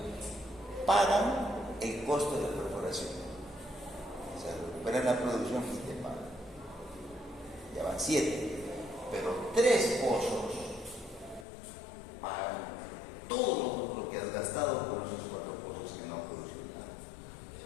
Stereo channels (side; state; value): right; drops out; at 11.5 s